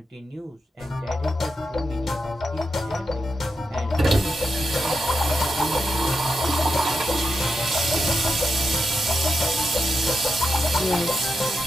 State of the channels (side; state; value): both; normal; correlation 0.87